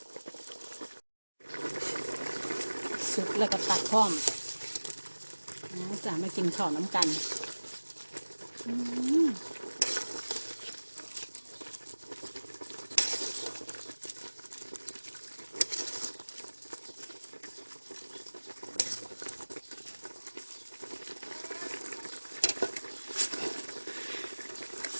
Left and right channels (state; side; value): inverted; both; correlation -1.00